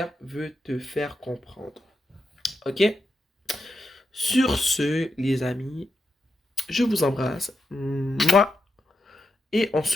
veut te faire comprendre. Ok? Sur ce, les amis, je vous embrasse. Mouah. Et on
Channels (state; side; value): normal; both; correlation 0.86